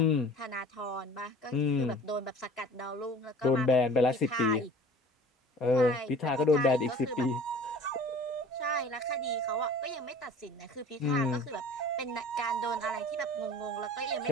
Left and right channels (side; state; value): both; normal; correlation 0.45